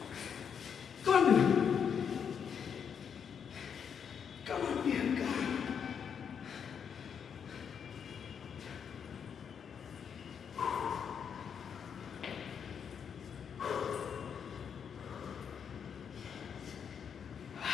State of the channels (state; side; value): quieter; right; 7.3 dB